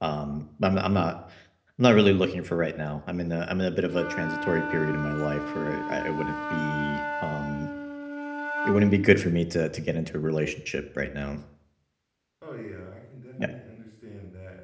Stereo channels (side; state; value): both; identical; correlation 1.00